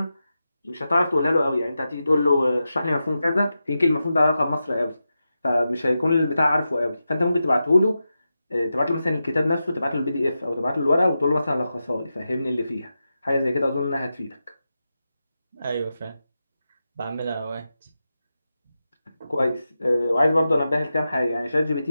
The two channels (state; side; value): inverted; both; correlation -0.90